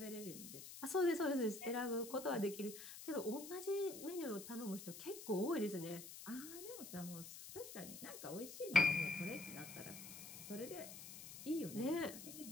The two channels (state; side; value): noise; left; hiss, 12 dB below the sound